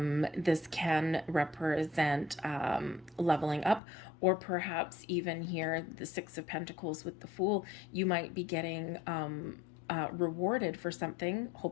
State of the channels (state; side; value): drops out; right; at 3.8 s